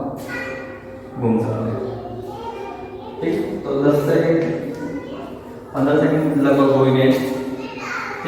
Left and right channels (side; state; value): both; identical; correlation 1.00